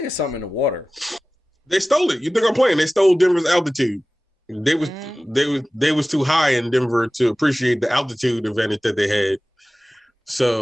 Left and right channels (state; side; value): normal; both; correlation 0.97